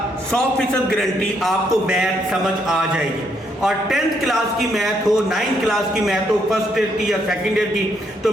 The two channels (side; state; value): both; normal; correlation 0.74